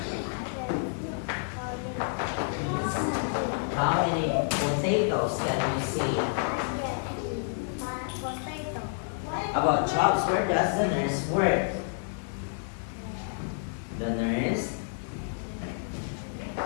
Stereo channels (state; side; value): silent; right; 58 dB below the other